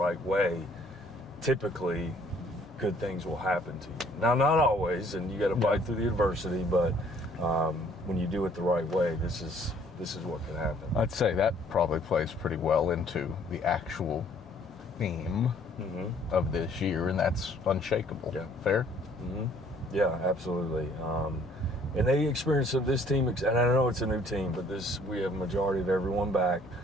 way, typically good things will happen to you. Now, not always, and you got to fight through the adversity, but when you do it the right way, this is this is what can happen. I'd say that probably plays pretty well into the actual theme of this year, and that's unshakable. Yeah. Fair? Yeah, absolutely. And they experience this team, and I know it's a new team, but we have a majority of everyone back,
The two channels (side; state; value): both; normal; correlation 0.60